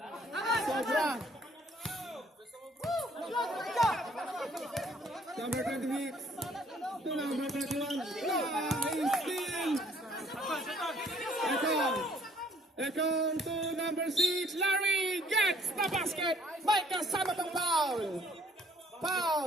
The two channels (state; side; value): normal; both; correlation 0.60